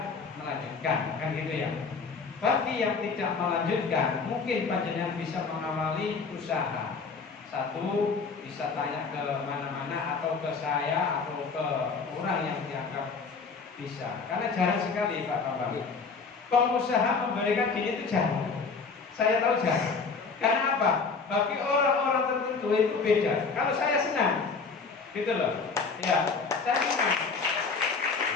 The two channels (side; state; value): right; quieter; 4.8 dB